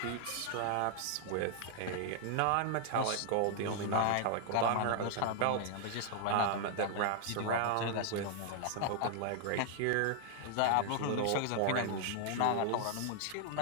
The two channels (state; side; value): different; both; correlation 0.00